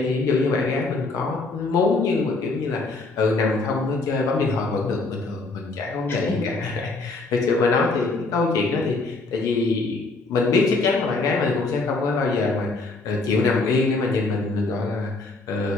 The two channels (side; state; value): right; quieter; 3.5 dB